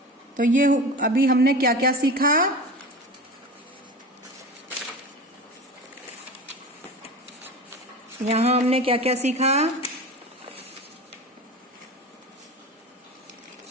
तो ये अभी हमने क्या क्या सीखा? यहाँ हमने क्या क्या सीखा?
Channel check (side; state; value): both; normal; correlation 0.31